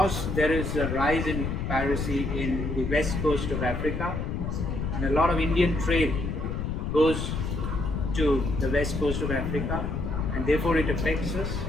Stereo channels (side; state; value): left; noise; rumble, 2 dB below the sound